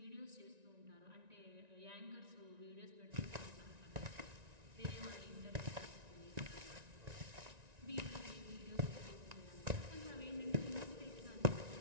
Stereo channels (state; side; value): late; left; 1.9 ms